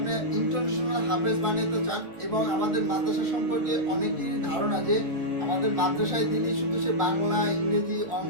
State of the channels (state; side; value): late; left; 1.5 ms